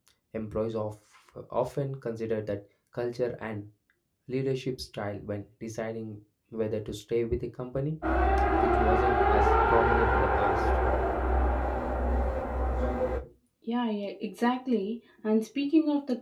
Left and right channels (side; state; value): both; identical; correlation 1.00